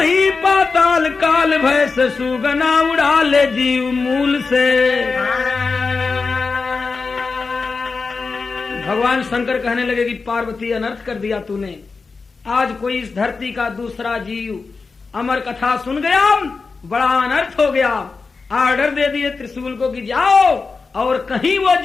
पाताल काल भय से सुगना उड़ा ले जीव मूल से। भगवान शंकर कहने लगे कि पार्वती अनर्थ कर दिया तूने आज कोई इस धरती का दूसरा जीव अमर कथा सुन गया बड़ा अनर्थ हो गया। आर्डर दे दिए त्रिशूल को कि जाओ और कहीं वो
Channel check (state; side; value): quieter; right; 4.5 dB